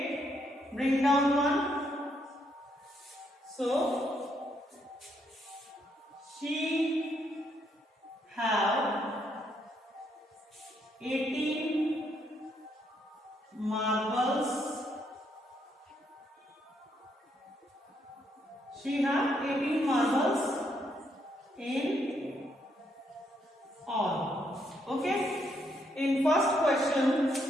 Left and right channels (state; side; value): normal; both; correlation 0.74